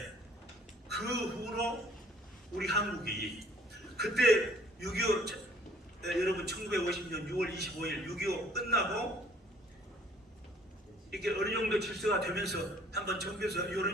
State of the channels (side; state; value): both; normal; correlation 0.58